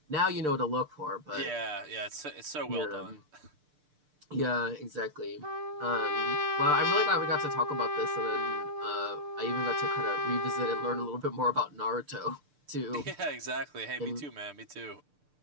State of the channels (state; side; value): late; left; 6.7 ms